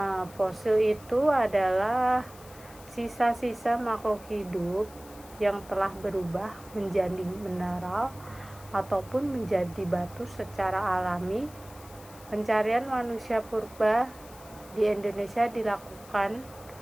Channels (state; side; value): noise; left; hiss, 21 dB below the sound